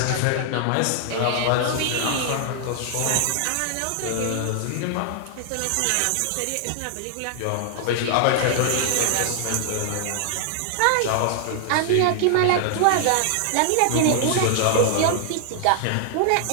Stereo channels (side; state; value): both; different; correlation 0.00